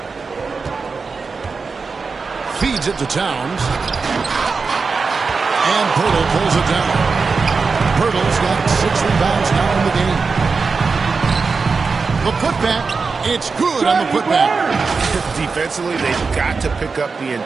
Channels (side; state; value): left; quieter; 4.7 dB